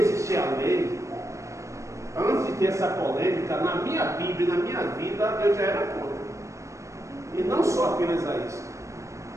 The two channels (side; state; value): left; late; 0.15 ms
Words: a lei, antes de ter essa polêmica, na minha Bíblia, na minha vida, eu já era contra. E não só apenas a isso,